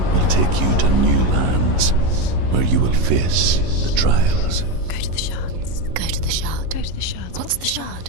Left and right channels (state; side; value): late; left; 11 ms